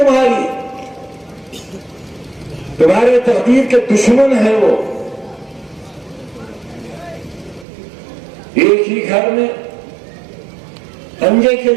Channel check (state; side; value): drops out; left; at 7.7 s